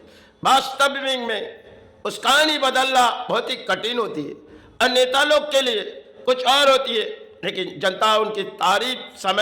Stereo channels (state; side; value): identical; both; correlation 1.00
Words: वास्तविक में उस कहानी बदलना बहुत ही कठिन होती है और नेता लोग के लिए कुछ और होती है, लेकिन जनता उनकी तारीफ